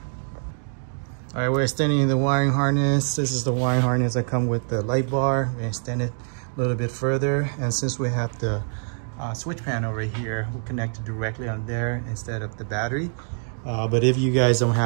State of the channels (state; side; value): silent; left; 62 dB below the other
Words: All right, we're extending the wiring harness. This is the wiring harness that come with the light bar. We extend it a little bit further, and since we have the switch panel right here, we'll connect it directly on there instead of the battery. But if you guys don't